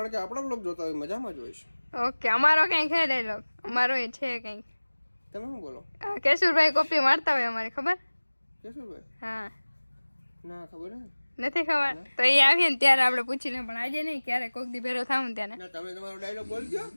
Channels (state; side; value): inverted; both; correlation -1.00